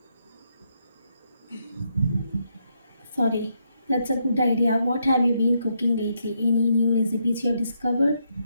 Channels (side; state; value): both; inverted; correlation -0.78